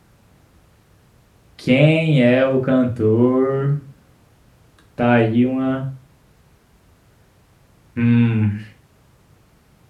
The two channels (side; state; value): both; identical; correlation 1.00